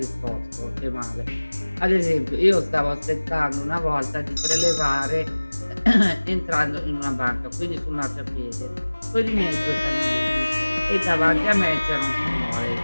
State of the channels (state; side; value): inverted; both; correlation -1.00